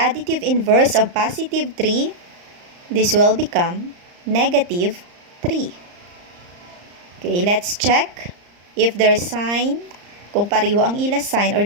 inverse of positive 3. This will become negative 3. Okay, let's check. if their sign, kung pareho ang ila sign or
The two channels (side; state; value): left; late; 34 ms